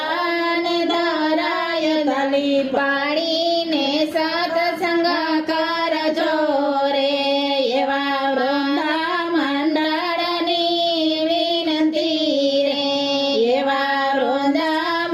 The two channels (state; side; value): identical; both; correlation 1.00